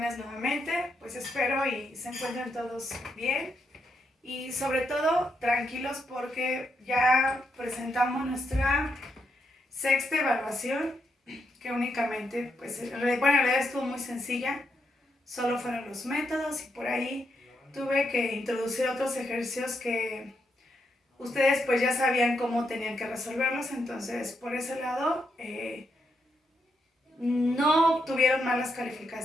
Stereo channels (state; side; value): normal; both; correlation 0.80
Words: nuevamente. Pues espero y se encuentren todos bien y sobre todo tranquilos porque ya presentamos nuestra sexta evaluación, que únicamente, pues, en realidad estuvo muy sencilla, solo fueron los métodos y por ahí tuve que introducir otros ejercicios que ustedes pues ya sabían cómo tenían que resolverlos, entonces por ese lado no obtuvieron malas